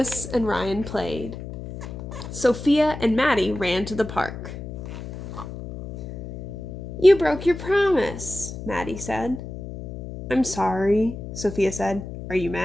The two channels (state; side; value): noise; left; hum, 10 dB below the sound